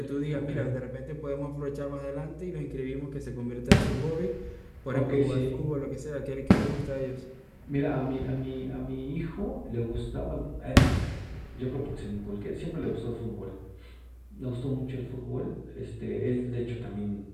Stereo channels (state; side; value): identical; both; correlation 1.00